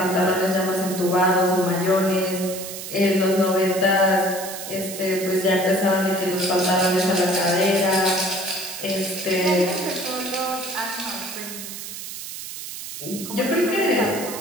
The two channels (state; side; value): noise; right; hiss, 9 dB below the sound